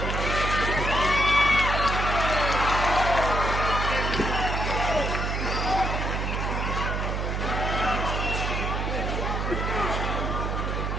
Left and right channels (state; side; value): noise; right; hum, 1 dB below the sound